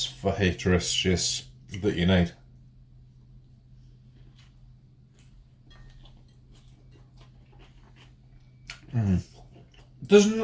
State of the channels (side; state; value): both; identical; correlation 1.00